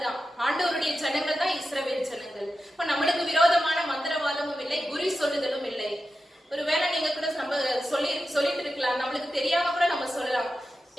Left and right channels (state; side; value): normal; both; correlation 0.91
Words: தான், ஆண்டவருடைய ஜனங்கள் தான் இஸ்ரவேல் ஜனங்கள். இப்ப நம்மளுக்கு விரோதமான மந்திரவாதமும் இல்லை, குறி சொல்லுதலும் இல்லை. ஒருவேளை நீங்க கூட நம்ம சொல்லிட்டு இருக்கலாம், நம்மளுக்கு தெரியாம கூட நம்ம சொல்லலாம்,